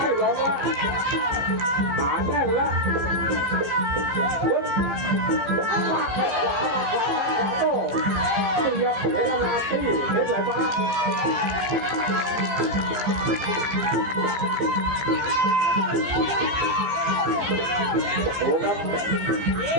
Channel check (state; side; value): late; left; 15 ms